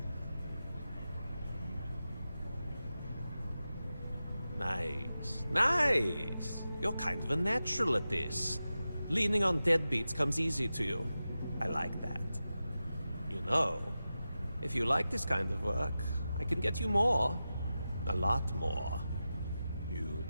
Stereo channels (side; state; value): both; inverted; correlation -0.93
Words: Nice. Nice! You're kind of a natural at this. Leaning on deadbeats comes easy to you. I like that. You know, if you like this kind of work, I can get you more. A lot more. You